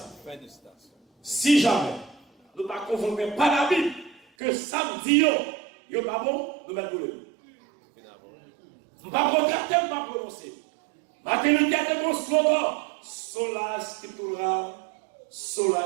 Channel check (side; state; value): left; drops out; at 4.2 s